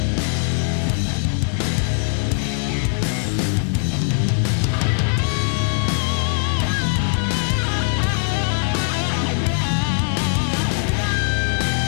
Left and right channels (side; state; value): right; silent; digital silence